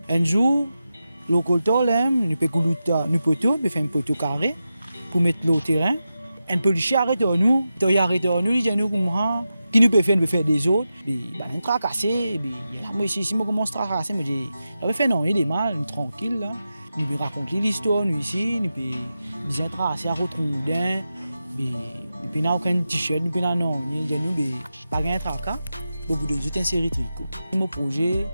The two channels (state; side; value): inverted; both; correlation -0.91